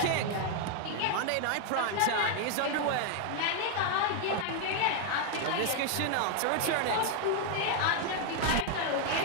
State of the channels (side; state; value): both; different; correlation 0.01